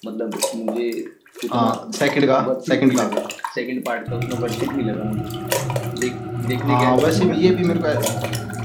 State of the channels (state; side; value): identical; both; correlation 1.00